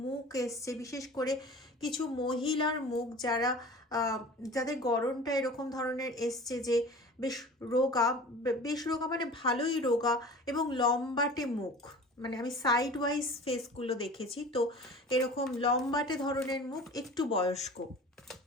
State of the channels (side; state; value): both; normal; correlation 0.40